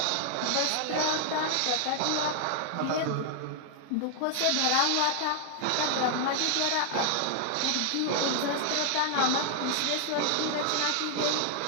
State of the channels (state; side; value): different; both; correlation 0.00